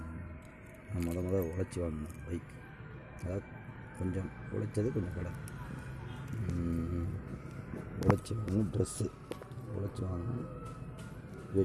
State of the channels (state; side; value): identical; both; correlation 1.00